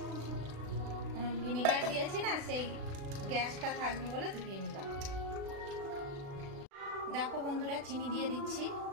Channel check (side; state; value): left; late; 36 ms